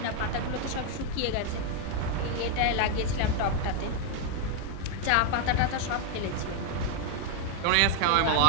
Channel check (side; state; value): both; different; correlation 0.00